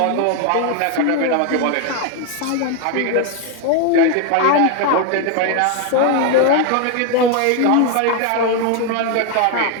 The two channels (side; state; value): both; different; correlation 0.01